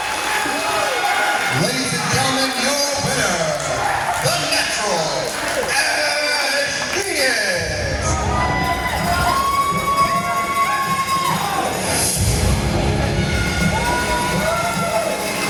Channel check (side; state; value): both; identical; correlation 1.00